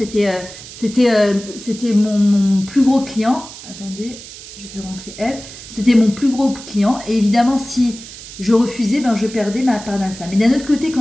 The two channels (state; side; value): noise; right; hiss, 15 dB below the sound